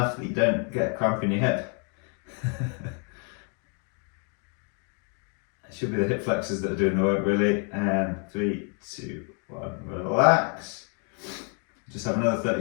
that you don't get a cramp in your hip. It should be the hip flexors that are doing the work really. And 3, 2, 1, relax. Just have another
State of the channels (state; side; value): quieter; right; 38.9 dB